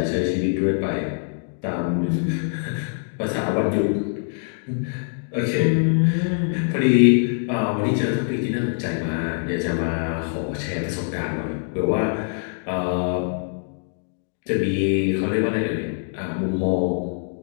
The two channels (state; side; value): silent; right; digital silence